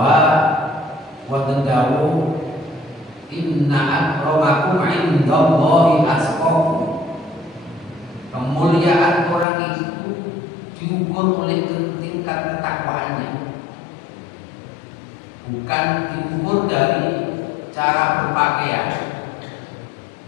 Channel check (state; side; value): drops out; right; at 9.5 s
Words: wonten dawuh inna akramakum indallahi atqakum. Kemuliaan orang itu diukur oleh tingkat ketakwaannya, bukan diukur dari cara berpakaian.